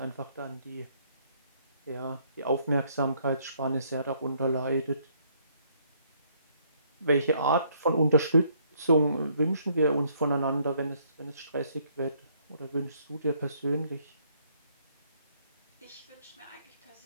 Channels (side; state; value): both; inverted; correlation -0.67